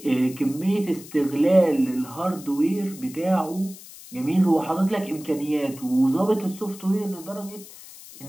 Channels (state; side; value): noise; left; hiss, 17 dB below the sound